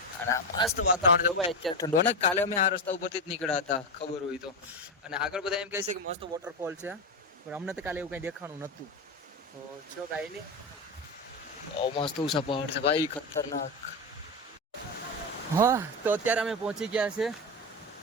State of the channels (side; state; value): both; normal; correlation 0.14